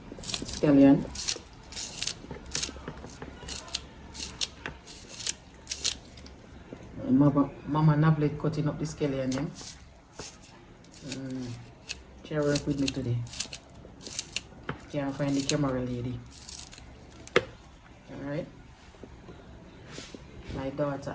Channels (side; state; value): both; identical; correlation 1.00